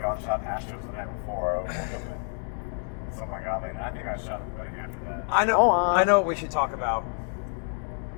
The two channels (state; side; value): silent; right; 59 dB below the other